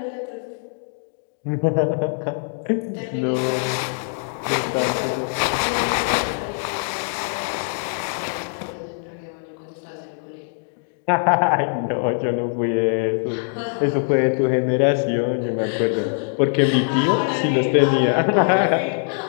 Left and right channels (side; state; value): right; silent; 64 dB below the other